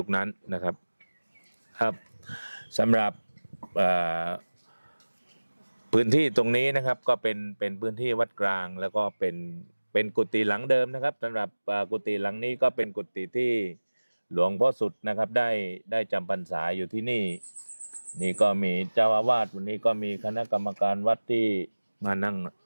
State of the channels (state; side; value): inverted; both; correlation -1.00